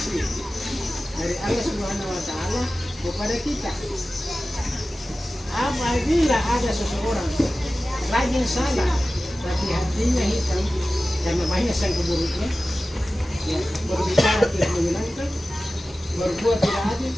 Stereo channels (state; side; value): normal; both; correlation 0.95